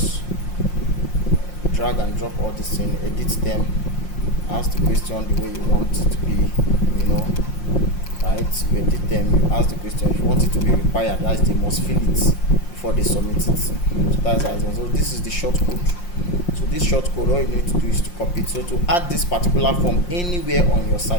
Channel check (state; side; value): late; right; 5.6 ms